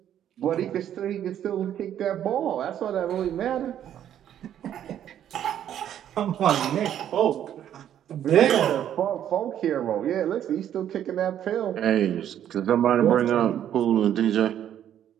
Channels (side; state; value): left; quieter; 10.4 dB